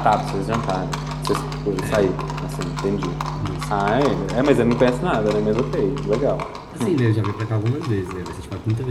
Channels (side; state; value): both; identical; correlation 1.00